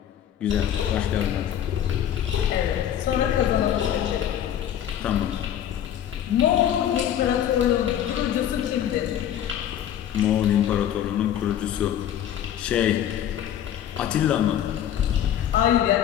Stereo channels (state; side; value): quieter; right; 10.5 dB